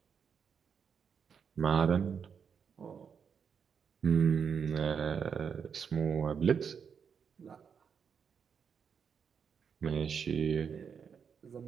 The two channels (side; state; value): left; quieter; 6.8 dB